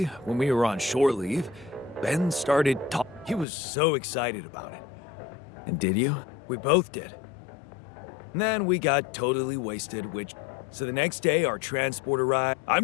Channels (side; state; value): right; drops out; at 3.5 s